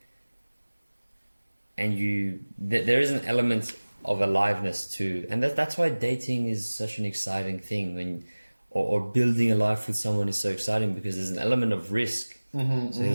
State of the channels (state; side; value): inverted; both; correlation -1.00